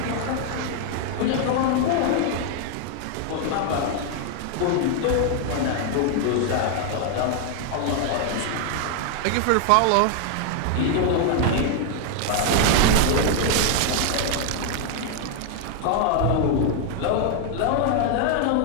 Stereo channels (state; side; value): different; both; correlation 0.00